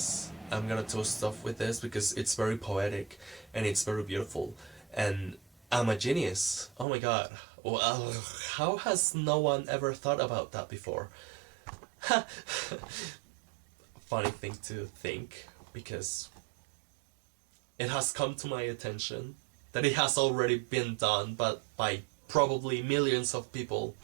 Because it's very poetic and it's very beautiful. And I'm a genius. Oh my god. Well, how has no one ever thought about that before? Funny thing to think, because it has come to my attention that it has already been done, but by probably millions of people,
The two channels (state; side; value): drops out; left; at 6.9 s